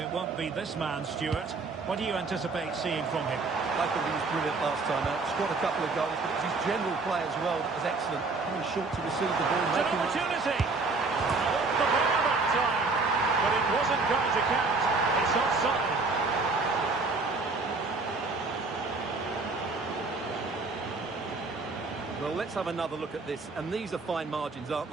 won't be this man, Stuart. What do you anticipate seeing from him? I thought he was brilliant last time out. Scored a couple of goals, but it was his general play as well that was excellent. Coming short to receive the ball. It's an opportunity! Off the bar that time, but it wasn't going to count. It's offside. Well, let's have another look at this. And these are fine margins, aren't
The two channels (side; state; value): left; quieter; 3.8 dB